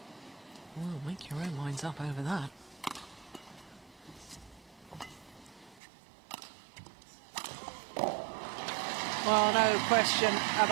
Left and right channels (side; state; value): left; drops out; at 5.8 s